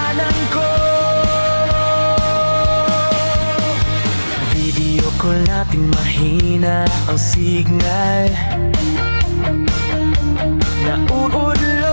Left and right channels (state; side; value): inverted; both; correlation -1.00